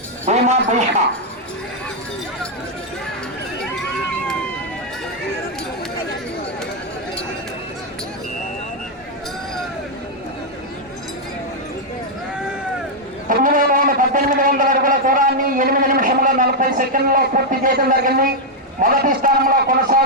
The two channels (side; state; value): both; normal; correlation -0.02